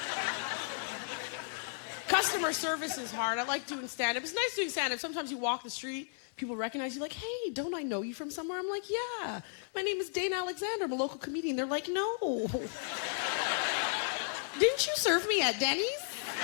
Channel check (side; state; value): right; silent; 55 dB below the other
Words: customer service is hard. I like doing stand-up. It's nice doing stand-up. Sometimes you walk the street, people recognize you like, hey, don't I know you from somewhere? I'm like, yeah. My name is Dana Alexander. I'm a local comedian. They're like, no. Didn't you serve me at Denny's?